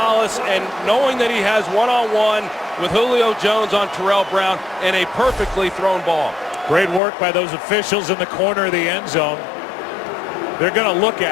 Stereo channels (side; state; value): right; drops out; at 7.0 s